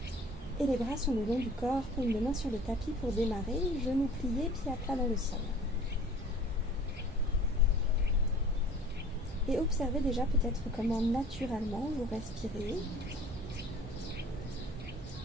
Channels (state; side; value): normal; both; correlation 0.47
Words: Et les bras sont le long du corps, paume de main sur le tapis pour démarrer, genoux pliés, pieds à plat dans le sol. Et observez déjà peut-être comment naturellement vous respirez.